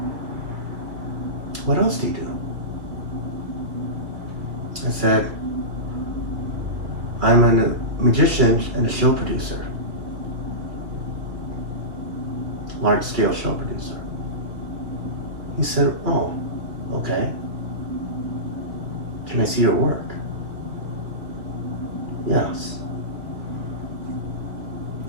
What else do you do? I said, I'm a magician and a show producer. Large scale show producer. He said, oh, okay. Can I see your work? Yes.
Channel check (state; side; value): late; left; 2.3 ms